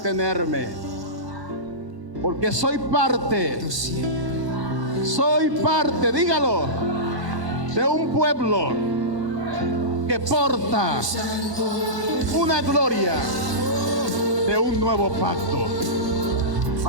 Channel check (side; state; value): left; late; 1.1 ms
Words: porque soy parte, dígalo, de un pueblo que porta una gloria de un nuevo pacto.